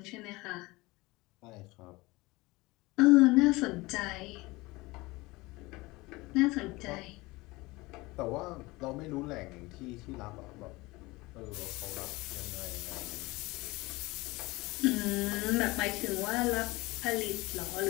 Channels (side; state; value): right; quieter; 22.0 dB